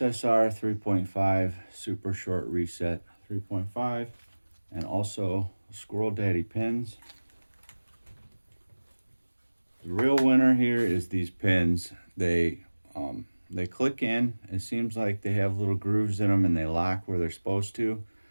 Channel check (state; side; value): inverted; both; correlation -1.00